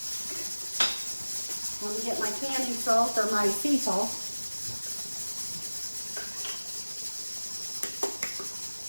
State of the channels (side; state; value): both; inverted; correlation -1.00